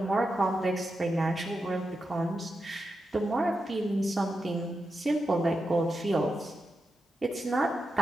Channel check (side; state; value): both; normal; correlation 0.88